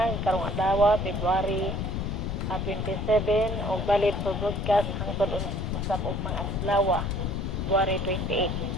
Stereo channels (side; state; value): left; noise; rumble, 2 dB below the sound